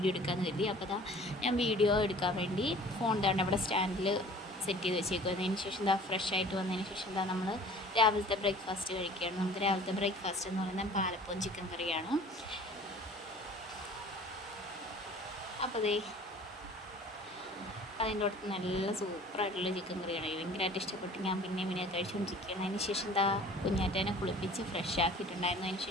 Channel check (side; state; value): both; normal; correlation 0.47